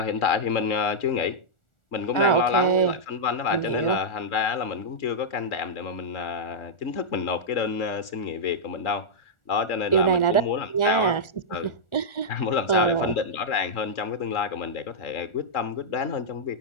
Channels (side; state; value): right; late; 1.4 ms